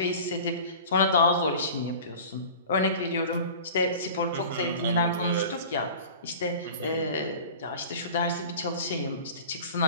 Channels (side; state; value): both; inverted; correlation -0.39